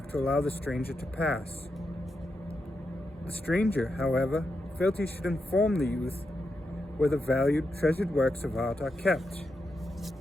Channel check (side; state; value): both; normal; correlation 0.85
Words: to allow the stranger to pass. The stranger, however, felt he should inform the youth where the valued, treasured works of art are kept.